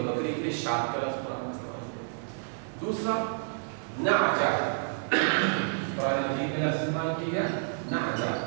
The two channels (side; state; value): left; silent; digital silence